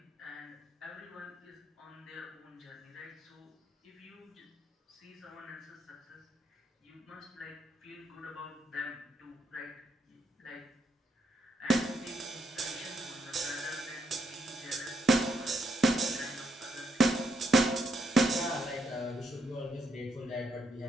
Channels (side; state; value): both; normal; correlation 0.76